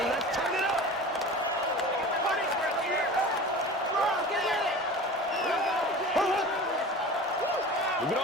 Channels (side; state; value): both; normal; correlation 0.36